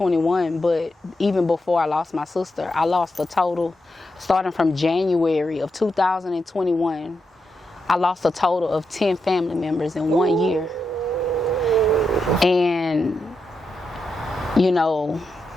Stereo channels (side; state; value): both; normal; correlation 0.85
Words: but even before I lost my sister, I lost a total, starting from January of 2021, I lost a total of 10 family members in 1 year. And,